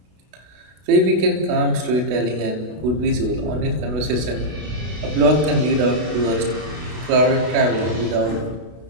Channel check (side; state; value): left; late; 32 ms